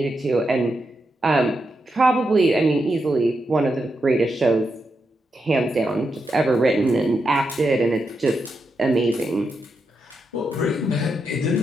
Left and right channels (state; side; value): normal; both; correlation 0.85